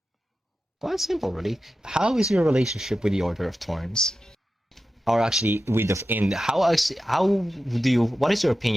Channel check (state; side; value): normal; both; correlation 0.92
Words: Well, it's simple, really. How is your relationship with the Order of Thorns? Or actually, with the in how do you? What is your